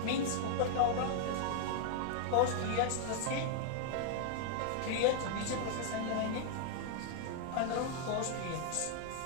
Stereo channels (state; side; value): different; both; correlation -0.01